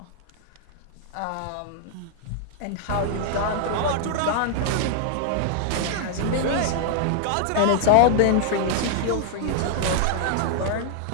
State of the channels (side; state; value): both; different; correlation 0.00